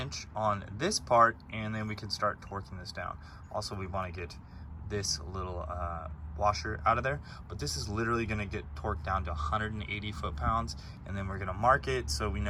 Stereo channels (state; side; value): identical; both; correlation 1.00